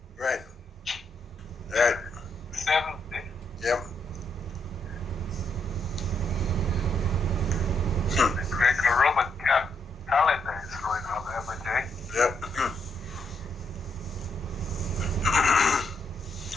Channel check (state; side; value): normal; both; correlation 0.77